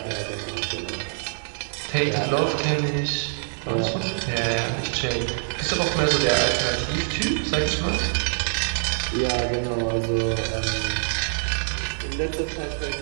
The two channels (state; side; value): silent; left; digital silence